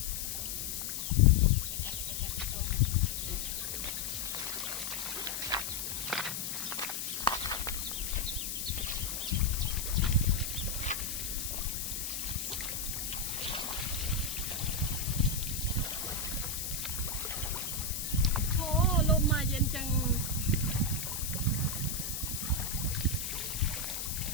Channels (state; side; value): noise; left; hiss, 3 dB below the sound